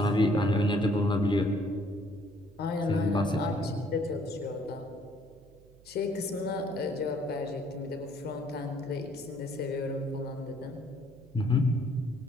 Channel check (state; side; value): noise; right; hum, 25 dB below the sound